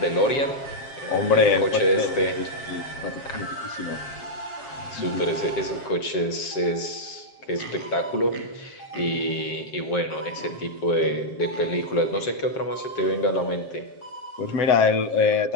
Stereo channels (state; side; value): late; right; 7.5 ms